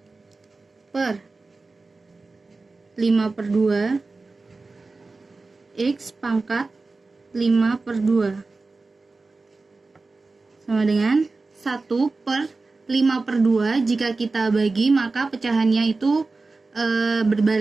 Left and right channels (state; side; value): quieter; left; 3.7 dB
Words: X pangkat 5/2 sama dengan 1/5/2. Jika kita bagi maka pecahannya itu